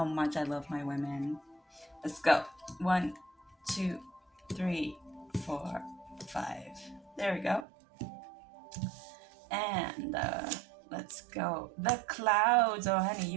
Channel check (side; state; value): left; drops out; at 7.7 s